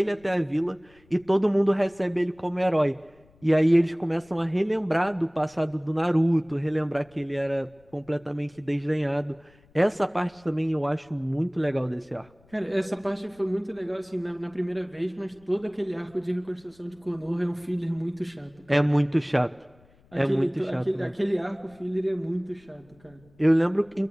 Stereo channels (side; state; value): left; noise; rumble, 30 dB below the sound